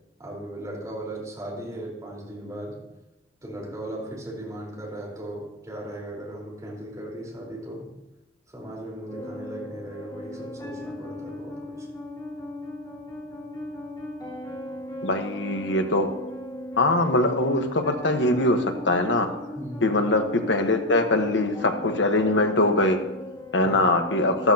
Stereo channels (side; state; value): both; normal; correlation 0.06